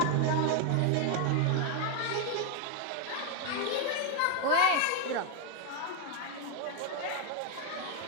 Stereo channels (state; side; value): different; both; correlation 0.00